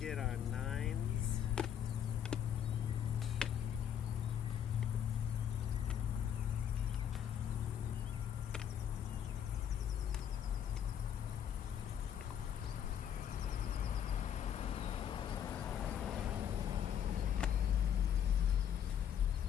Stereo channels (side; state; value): right; quieter; 9.2 dB